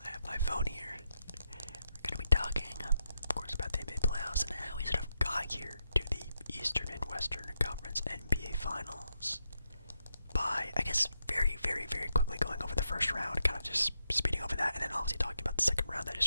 I have my phone here. We're going to be talking, of course, about the NBA playoffs and how we sort of got here to the Eastern and Western Conference NBA Finals by, I guess, very quickly going over the first round, kind of just speeding over that, and then obviously talking about the second round that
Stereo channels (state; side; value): inverted; both; correlation -0.82